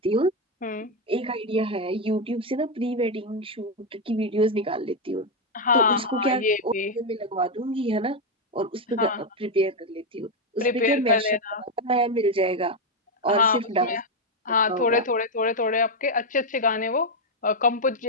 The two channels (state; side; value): normal; both; correlation 0.04